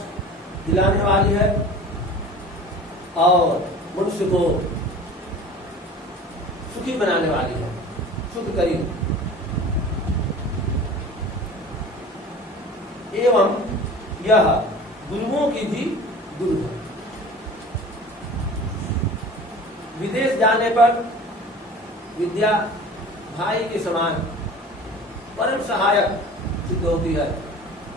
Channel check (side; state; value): both; normal; correlation 0.40